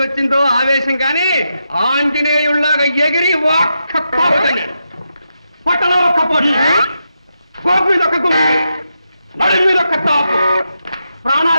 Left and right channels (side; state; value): both; inverted; correlation -0.85